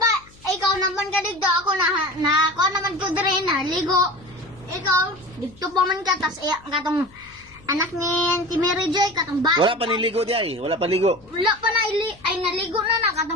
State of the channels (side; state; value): left; noise; hum, 26 dB below the sound